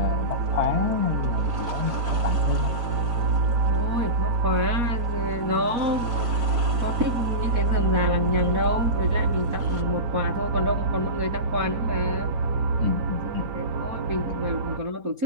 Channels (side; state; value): left; late; 4.1 ms